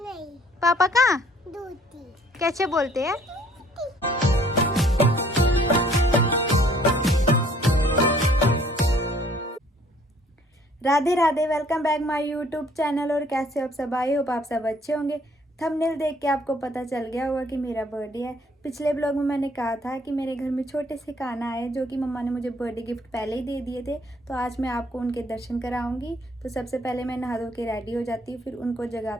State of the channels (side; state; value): both; normal; correlation 0.60